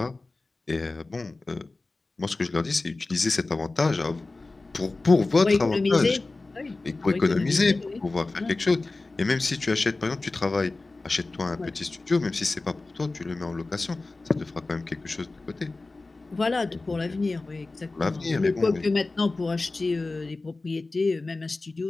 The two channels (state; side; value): quieter; right; 3.3 dB